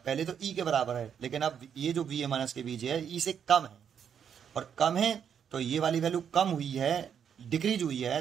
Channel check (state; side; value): quieter; left; 8.0 dB